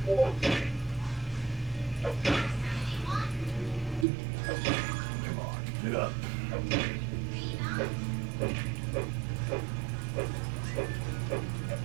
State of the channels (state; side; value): drops out; left; at 4.0 s